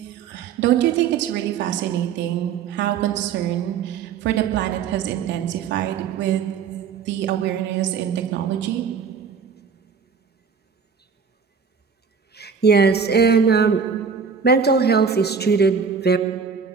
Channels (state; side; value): quieter; left; 6.2 dB